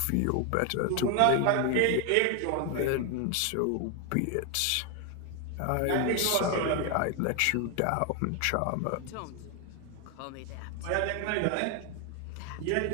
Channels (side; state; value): both; different; correlation 0.01